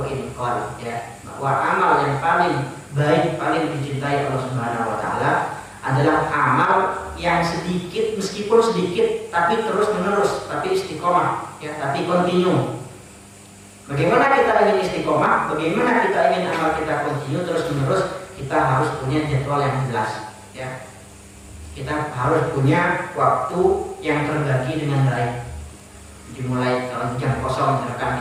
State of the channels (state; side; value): identical; both; correlation 1.00